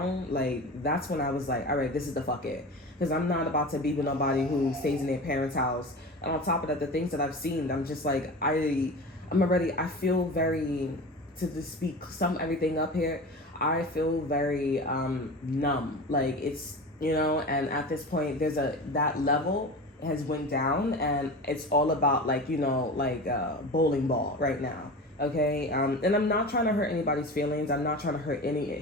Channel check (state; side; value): normal; both; correlation 0.31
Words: like, that's when I was like, all right, this is the fuck it. Because I'm not about to be with nobody who stays in their parents' house. And on top of that, the things that I've seen, I'm just like, I feel very, to just speak everything up here, I feel very numb. Like, it's, you know, and at this point, that level has went down, and it's all about, like, you know, like a bowling ball right now. Okay, and I'm not trying to hurt anybody's feelings. I'm not trying to hurt